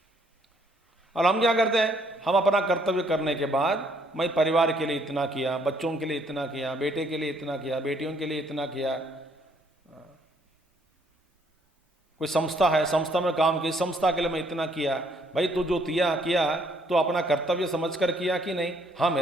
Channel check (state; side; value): normal; both; correlation 0.66